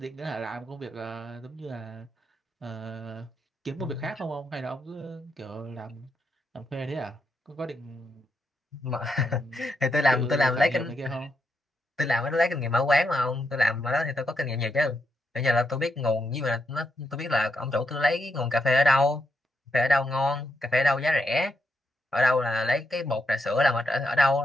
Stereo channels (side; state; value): both; normal; correlation 0.82